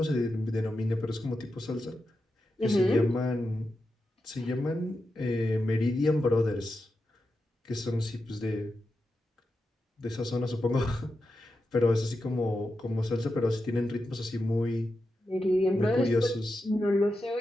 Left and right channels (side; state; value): both; normal; correlation 0.89